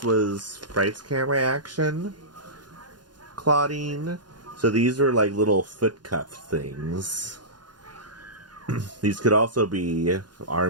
was Fright's Camera Action Claudine. So these were like little foot cuff things. These could also be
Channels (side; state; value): left; late; 0.70 ms